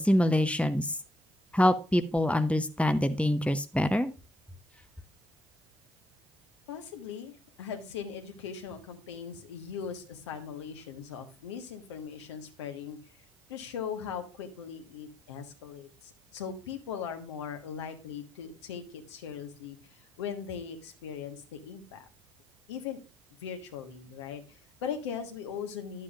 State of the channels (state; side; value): normal; both; correlation 0.77